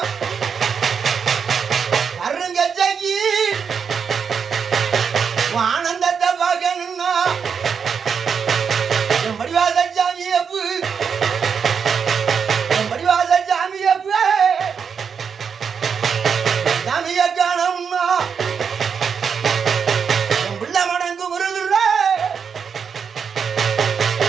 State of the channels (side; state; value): left; quieter; 6.6 dB